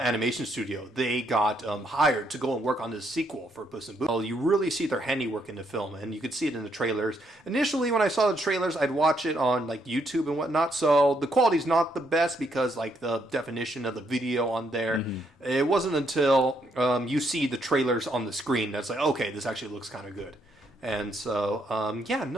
studio. They got hired to go and work on this sequel for Puss in Boots. Well, you really see their handiwork in the film, and you could see it in the trailers. Initially, when I saw the trailers, I'd watch it on like YouTube and whatnot, so the quality's not the best because like the definition of the video on there. It wasn't until you see the trailers on the screen that's like, okay, this actually looks kind of good. And so,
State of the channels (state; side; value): normal; both; correlation 0.74